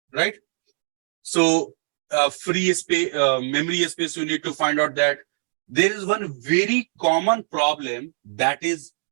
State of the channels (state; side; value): silent; left; digital silence